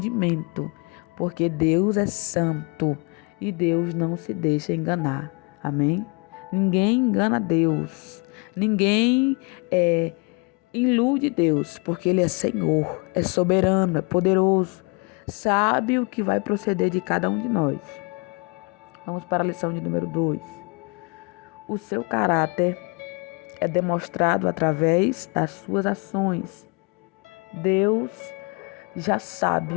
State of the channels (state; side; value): quieter; right; 31.7 dB